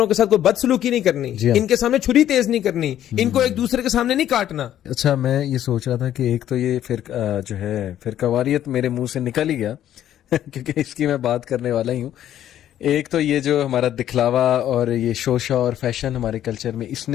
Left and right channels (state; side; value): quieter; right; 11.5 dB